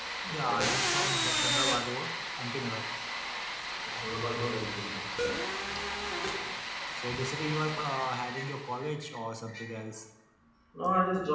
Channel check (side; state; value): both; identical; correlation 1.00